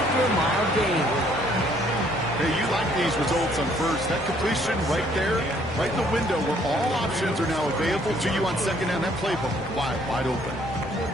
a mild gain. Hey, you like these results on first. That completion right there, right in the window where all options are now available to you on 2nd down. That playbook wide open.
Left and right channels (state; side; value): normal; both; correlation 0.64